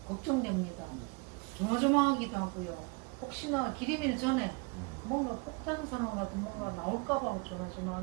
걱정됩니다. 조마조마하기도 하고요. 혹시나 기림일 전에 뭔가 폭탄 선언 같은 뭔가 나올까봐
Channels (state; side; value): quieter; left; 30.3 dB